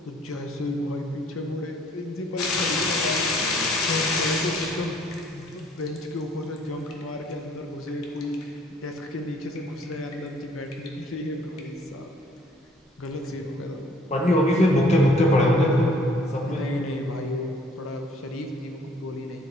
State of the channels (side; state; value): both; normal; correlation 0.59